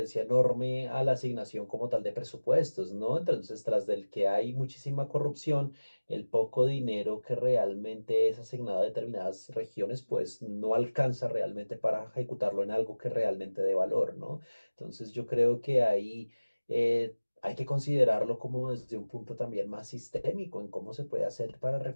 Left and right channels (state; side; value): inverted; both; correlation -1.00